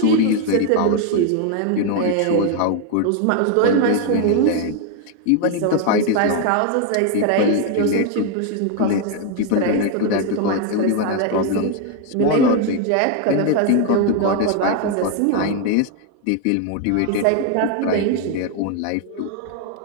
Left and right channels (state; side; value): different; both; correlation 0.01